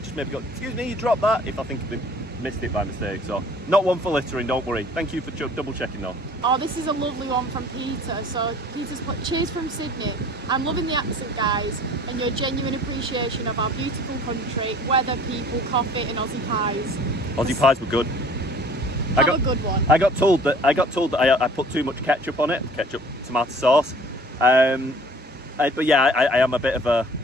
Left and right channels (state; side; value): normal; both; correlation 0.50